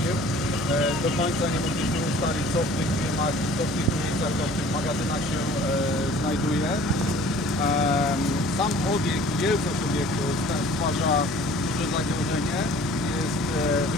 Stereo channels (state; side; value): normal; both; correlation 0.50